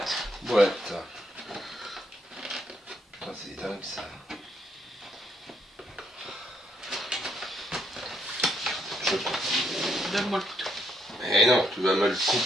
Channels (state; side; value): normal; both; correlation 0.74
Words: Ah, c'est dingue ça. Donne-moi le couteau. Eh non, tu vas me le